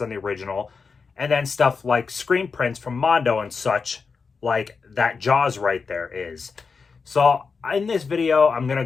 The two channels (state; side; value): quieter; right; 5.1 dB